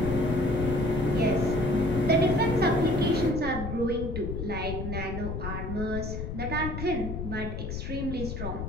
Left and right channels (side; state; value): left; noise; rumble, 5 dB below the sound